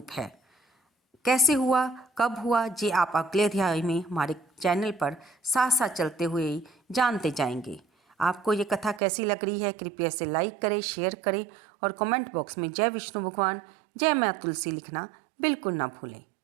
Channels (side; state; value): left; drops out; at 9.0 s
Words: है। कैसे हुआ, कब हुआ, ये आप अगले अध्याय में हमारे चैनल पर साथ साथ चलते हुए ही जानते जाएंगे। आपको ये कथा कैसी लग रही है कृपया इसे लाइक करें, शेयर करें और कमेंट बॉक्स में जय विष्णु भगवान, जय माँ तुलसी लिखना बिल्कुल ना भूलें।